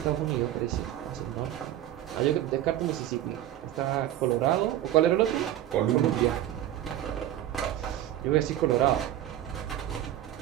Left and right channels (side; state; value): left; quieter; 12.4 dB